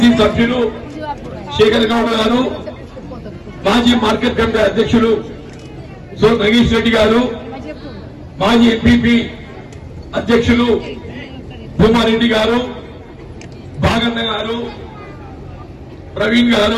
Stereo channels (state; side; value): identical; both; correlation 1.00